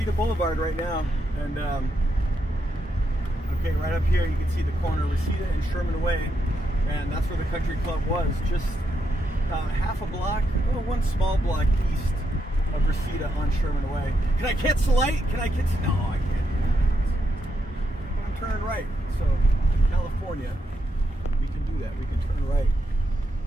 Boulevard right now, and okay, right up here you can see the corner of Reseda and Sherman Way, and that's where the country club was, just half a block, well, one small block east of Reseda on Sherman Way. Can I catch the light? Can I catch? No, I can't. I'm turning right, so in California we can do that. We can turn right,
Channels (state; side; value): normal; both; correlation 0.81